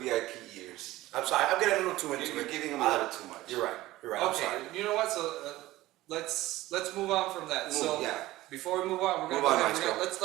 years. I'm sorry, I'm getting a little too into You're it. giving him a little too much. You're right. You're right. I'm Okay, sorry. you know what? So let's move on from that. So yeah. before we move on, we're Move gonna on, go ahead and Maestro.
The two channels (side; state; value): left; quieter; 17.1 dB